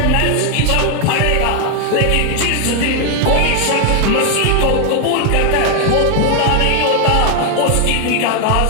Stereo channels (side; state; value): both; different; correlation 0.01